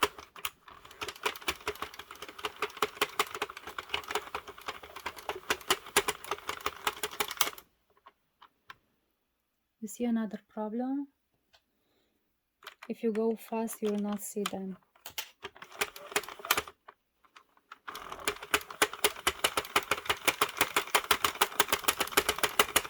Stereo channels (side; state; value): both; identical; correlation 1.00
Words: You see another problem? If you go fast, you will not see them.